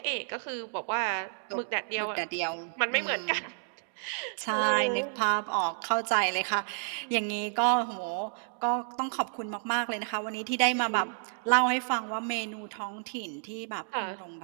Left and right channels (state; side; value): silent; left; digital silence